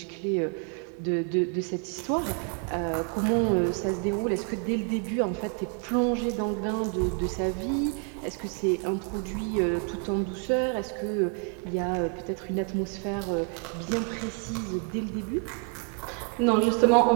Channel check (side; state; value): left; quieter; 38.6 dB